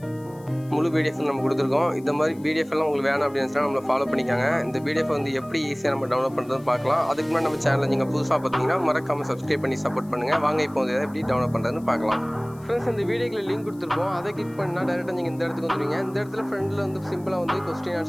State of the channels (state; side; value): noise; left; hiss, 27 dB below the sound